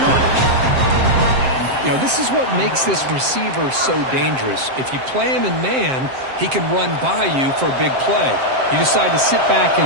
You know, this is what makes this receiver so dangerous. If you play him in man, he can run by you for a big play. You decide to sit back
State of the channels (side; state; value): left; late; 7.6 ms